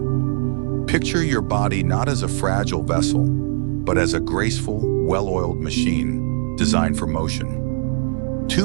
Picture your body not as a fragile vessel, but as a graceful, well-oiled machine designed for motion.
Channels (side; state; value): left; silent; 65 dB below the other